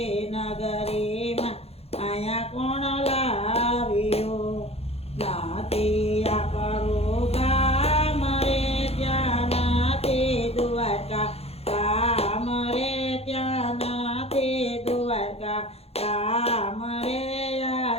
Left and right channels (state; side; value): late; right; 0.29 ms